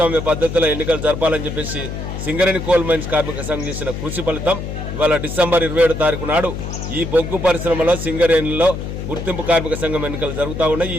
పద్ధతిలో ఎన్నికలు జరపాలని చెప్పేసి సింగరేణి కోల్ మైన్స్ కార్మిక సంఘం చేసిన కృషి ఫలితం ఇవాళ డిసెంబర్ 27వ తారీఖు నాడు ఈ బొగ్గు పరిశ్రమలో సింగరేణిలో గుర్తింపు కార్మిక సంఘం ఎన్నికలు జరుగుతూ ఉన్నాయి. ఈ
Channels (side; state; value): left; noise; hum, 6 dB below the sound